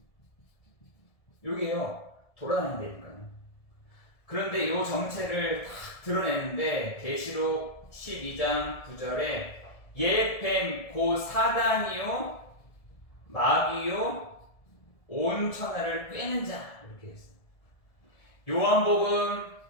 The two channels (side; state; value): right; late; 1.7 ms